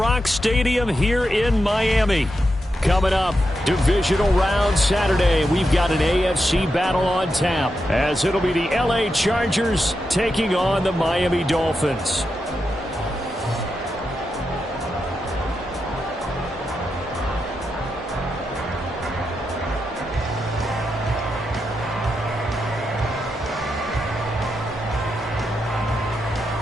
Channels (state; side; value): normal; both; correlation 0.86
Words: Stadium here in Miami. Coming up, divisional round Saturday. We've got an AFC battle on tap as it'll be the LA Chargers taking on the Miami Dolphins.